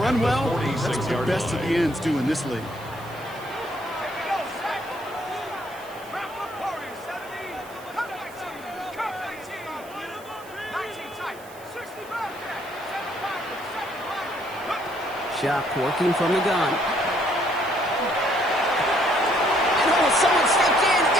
well, that's what the best of the ends do in this league. Shock working from the gun. And oh, someone stepped in.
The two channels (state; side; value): noise; right; hiss, 22 dB below the sound